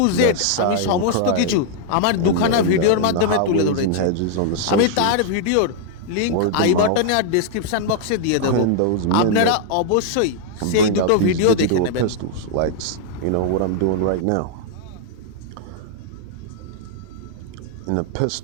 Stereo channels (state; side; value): different; both; correlation 0.00